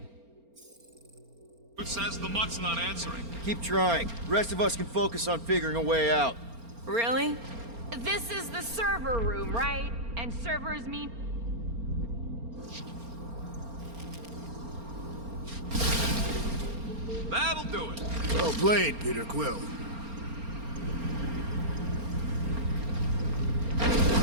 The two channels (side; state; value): left; late; 4.3 ms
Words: Who says the mutt's not answering? Keep trying. The rest of us can focus on figuring a way out. Really? This is the server room, right? And servers mean... That'll do it. Well played, Peter Quill.